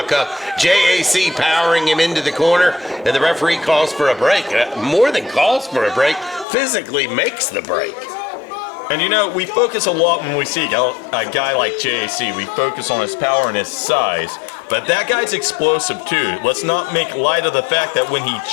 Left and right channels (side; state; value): right; drops out; at 6.5 s